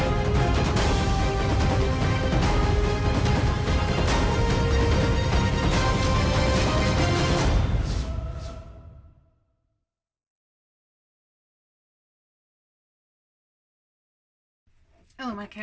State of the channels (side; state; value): both; identical; correlation 1.00